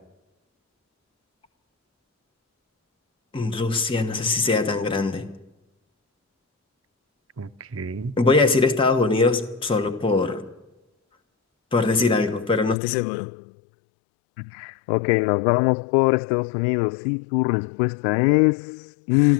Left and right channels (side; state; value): right; drops out; at 12.8 s